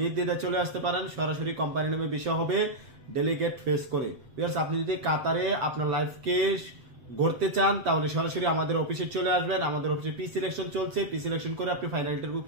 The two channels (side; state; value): left; late; 7.7 ms